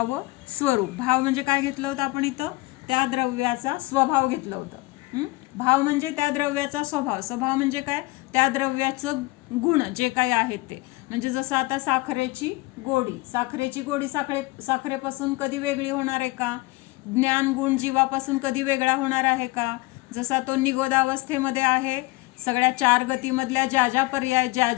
स्वरूप। भाव म्हणजे काय घेतलं होतं आपण इथं, त्या द्रव्याचा स्वभाव घेतलं होतं। भाव म्हणजे त्या द्रव्याचा स्वभाव, स्वभाव म्हणजे काय, त्या द्रव्याचं गुण जे काही आहेत ते। म्हणजे जसं आता साखरेची गोडी साखरेपासून कधी वेगळी होणार आहे का? ज्ञान गुण जीवापासून कधी वेगळा होणार आहे का? जसा तो निगोदावस्थेमध्ये आहे, सगळ्या चार गतीमधल्या ज्या पर्याय,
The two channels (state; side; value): quieter; right; 22.5 dB